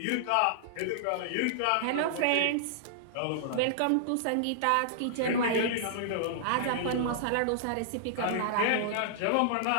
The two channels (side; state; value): both; different; correlation -0.01